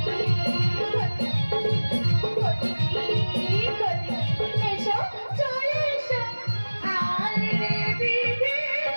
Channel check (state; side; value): inverted; both; correlation -1.00